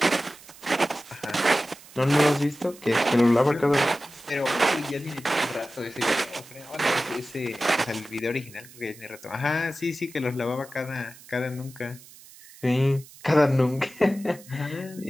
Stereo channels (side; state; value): right; noise; hiss, 21 dB below the sound